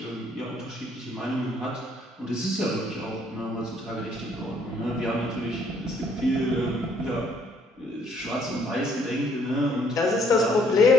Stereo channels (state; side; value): normal; both; correlation 0.65